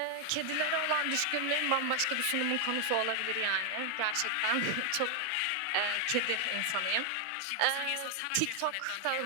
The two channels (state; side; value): different; both; correlation 0.00